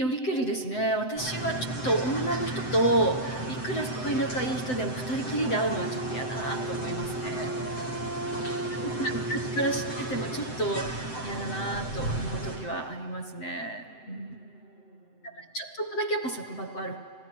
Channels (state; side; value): late; right; 7.8 ms